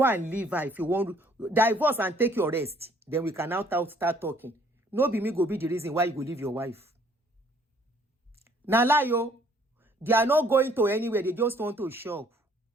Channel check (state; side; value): normal; both; correlation 0.62